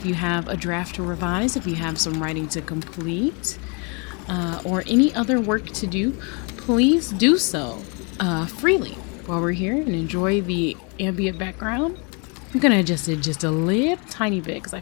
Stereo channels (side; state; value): right; quieter; 33.7 dB